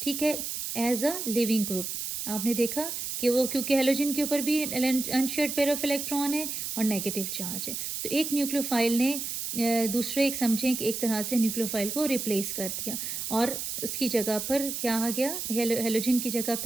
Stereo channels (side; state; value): right; noise; hiss, 4 dB below the sound